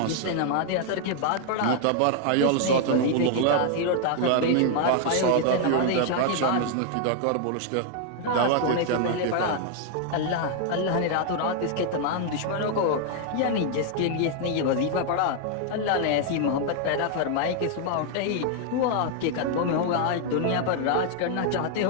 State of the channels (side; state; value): both; different; correlation 0.00